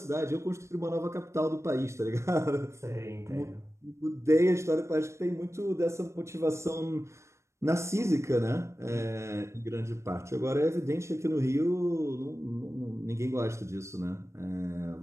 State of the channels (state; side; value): late; left; 0.13 ms